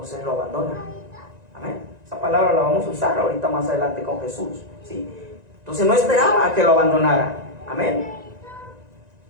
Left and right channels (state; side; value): late; left; 1.9 ms